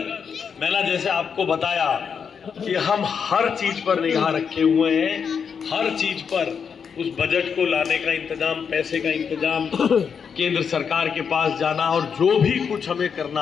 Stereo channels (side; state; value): right; quieter; 6.6 dB